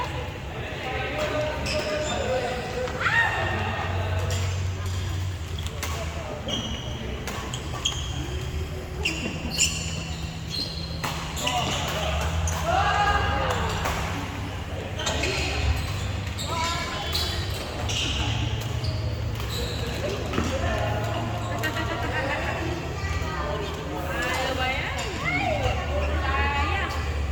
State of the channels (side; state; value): both; identical; correlation 1.00